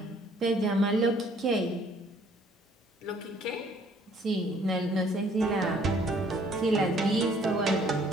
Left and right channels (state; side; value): normal; both; correlation 0.60